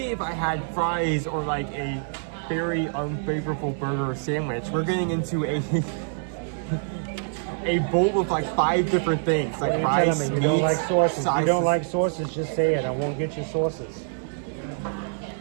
if I had fries or like a very unfavorable burger or sandwich, we're getting into a a bowl with like 5 different things, like What are fries, you telling me? You don't meats, like sauces. You sauces. don't like sauces, just say it. I won't get you sauces.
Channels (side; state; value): left; silent; digital silence